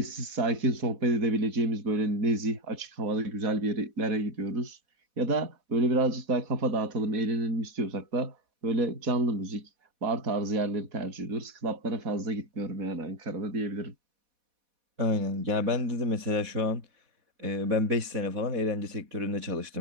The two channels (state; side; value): late; left; 4.1 ms